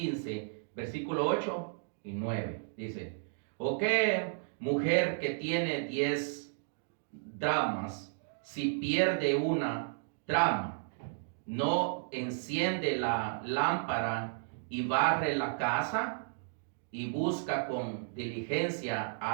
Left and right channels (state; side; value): silent; left; digital silence